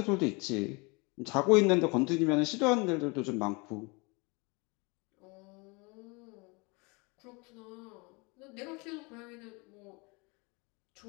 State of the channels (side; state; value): right; quieter; 28.4 dB